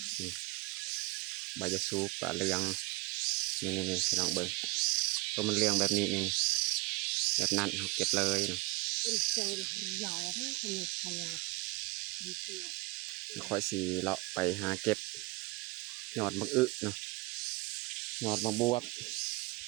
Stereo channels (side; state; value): left; quieter; 24.6 dB